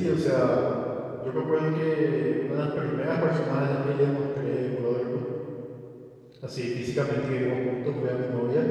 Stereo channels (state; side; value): identical; both; correlation 1.00